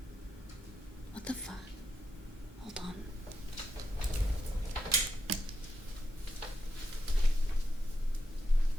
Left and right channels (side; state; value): both; normal; correlation 0.84